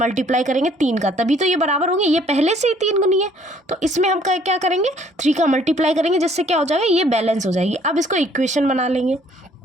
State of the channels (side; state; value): both; normal; correlation 0.60